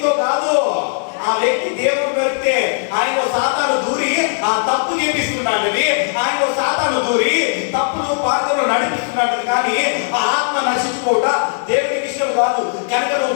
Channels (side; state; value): right; silent; 66 dB below the other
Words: కాదు. ఆ వ్యక్తి దేవుడు దొరికితే ఆయన సాతాను దూరి ఆ తప్పు చేపిస్తున్నాడు. ఆయన సాతాను దూరి తప్పులు పాత్రలు నడిపిస్తున్నాడు. కానీ ఆ ఆత్మ నశించుకోవట దేవుడికి ఇష్టం కాదు. కనుక నువ్వు